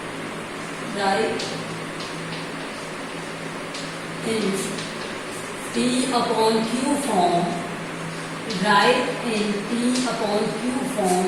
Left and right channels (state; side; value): identical; both; correlation 1.00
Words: Write in P upon Q form. Write in P upon Q form